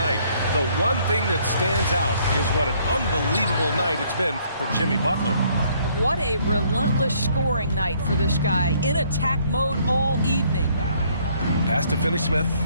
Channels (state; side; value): inverted; both; correlation -0.64